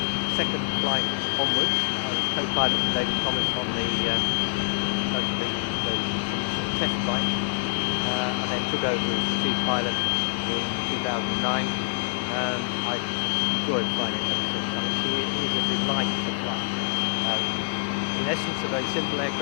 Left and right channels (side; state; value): right; quieter; 33.3 dB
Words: second flight onwards. I was co-pilot to David Thomas on most of the initial test flights, and then took over as the chief pilot in 2009, and I have enjoyed flying it ever since. I mean, she is a delight to fly. In essence, a very simple